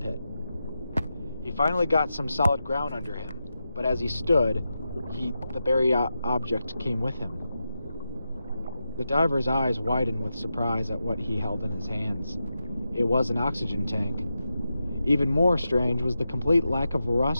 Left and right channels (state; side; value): inverted; both; correlation -0.89